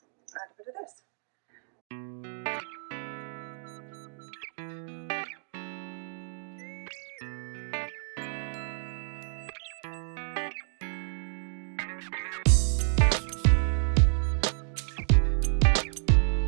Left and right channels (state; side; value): silent; left; digital silence